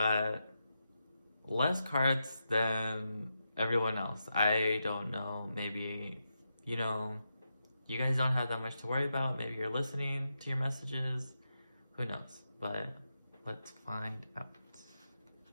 less cards than everyone else. I don't know, maybe, you guys don't have that much to worry about. Maybe you're listening to your messages. Who knows? But let's find out.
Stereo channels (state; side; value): inverted; both; correlation -0.86